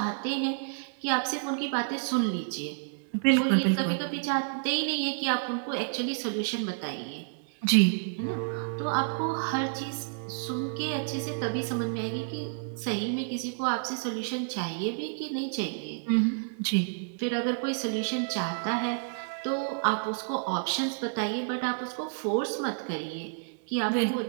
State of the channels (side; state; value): left; silent; 58 dB below the other